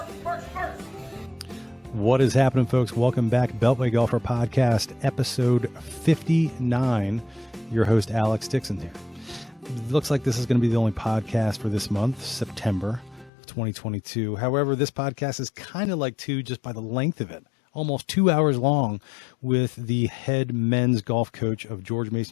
What is happening, folks? Welcome back. Beltway Golfer Podcast, episode 59. Your host, Alex Dixon here. It looks like this is going to be the only podcast for this month, September of 2022. However, this podcast is kind of like two just by the length of it. Almost 2 hours long with the head men's golf coach of George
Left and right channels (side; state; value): right; drops out; at 13.3 s